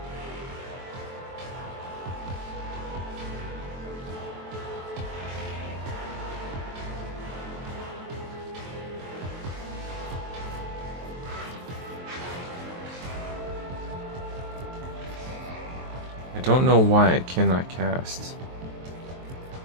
I don't know why I cannot cast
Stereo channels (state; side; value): late; left; 23 ms